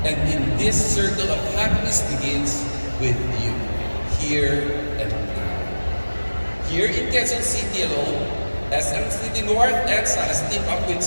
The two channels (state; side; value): inverted; both; correlation -1.00